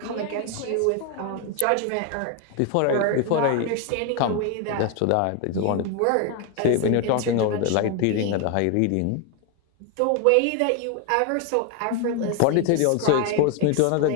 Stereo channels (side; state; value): both; different; correlation 0.01